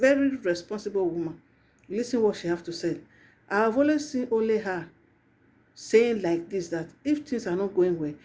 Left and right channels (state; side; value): identical; both; correlation 1.00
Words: responsible woman. You listen what she have to say. I have always seen only her saying like this, that if things are not going well,